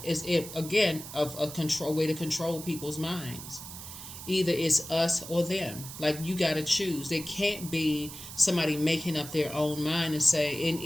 It's again of a control way to control people's minds. Either it's us or them. Like, you got to choose. There can't be somebody making up their own mind and say, in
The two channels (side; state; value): right; noise; hiss, 12 dB below the sound